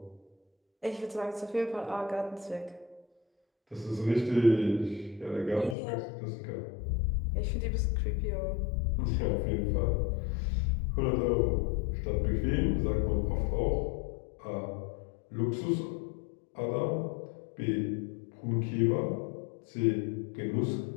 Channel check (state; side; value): drops out; right; at 5.8 s